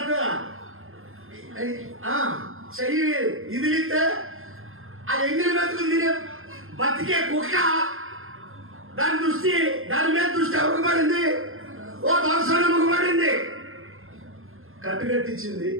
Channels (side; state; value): left; late; 0.60 ms